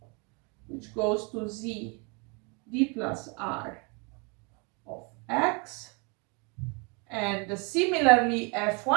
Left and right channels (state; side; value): quieter; left; 32.8 dB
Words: which goes to Z D plus R of X, and similarly